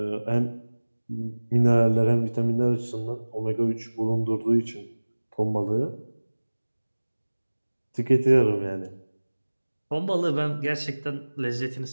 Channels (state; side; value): inverted; both; correlation -1.00